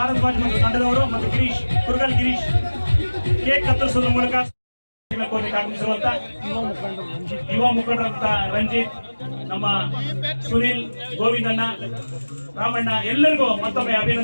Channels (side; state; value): both; inverted; correlation -1.00